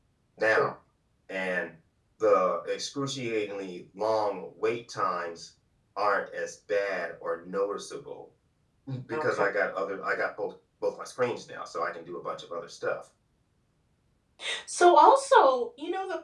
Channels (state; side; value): identical; both; correlation 1.00